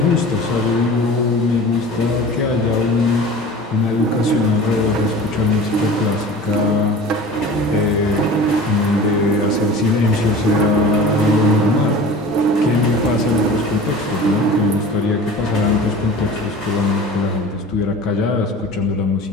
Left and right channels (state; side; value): normal; both; correlation 0.40